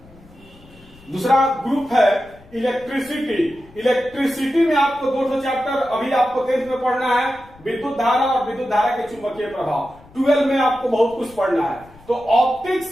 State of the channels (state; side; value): noise; left; rumble, 24 dB below the sound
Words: दूसरा ग्रुप है इलेक्ट्रिसिटी। इलेक्ट्रिसिटी में आपको 2 चैप्टर अभी आपको 10th में पढ़ना है, विद्युत धारा और विद्युत धारा के चुंबकीय प्रभाव। 12 में आपको बहुत कुछ पढ़ना है। तो